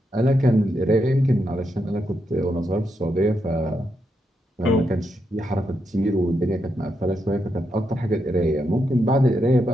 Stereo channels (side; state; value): both; normal; correlation 0.82